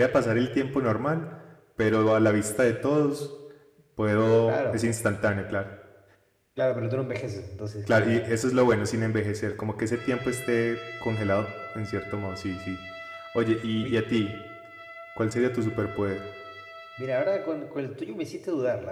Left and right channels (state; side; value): identical; both; correlation 1.00